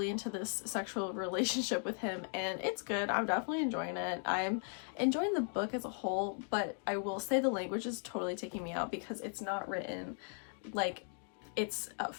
into this sexual relationship with him, and it's good. I'm definitely enjoying it. I'm enjoying the book as a whole, but I will say the language is totally taking me out because it's not written like it's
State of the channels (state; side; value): silent; right; 53 dB below the other